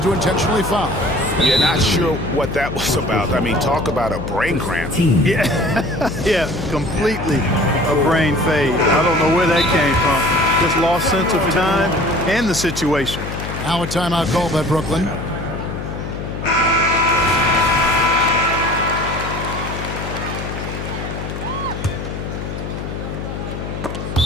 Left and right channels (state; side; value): noise; left; hum, 7 dB below the sound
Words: intentionally foul. Yeah, not sure what that was about. I mean, talk about a brain cramp. Yeah, completely a brain fade. I don't know where that came from. Just lost sense of time and the situation. Now a timeout called by Brooklyn.